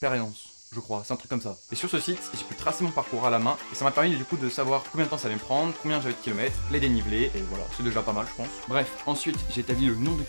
je crois, c'est un truc comme ça. Et sur ce site, j'ai pu tracer mon parcours à la main et ça m'a permis du coup de savoir combien de temps ça allait me prendre, combien j'avais de kilomètres, les dénivelés, et voilà, c'est déjà pas mal je pense. Bref, ensuite, j'ai établi le nombre de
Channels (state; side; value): inverted; both; correlation -1.00